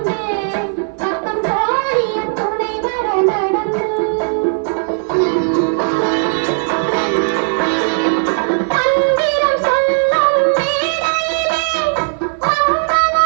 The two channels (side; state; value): left; silent; digital silence